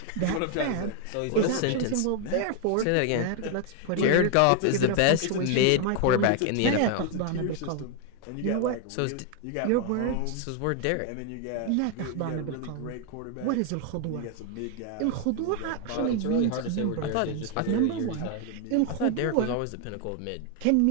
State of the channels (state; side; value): different; both; correlation 0.00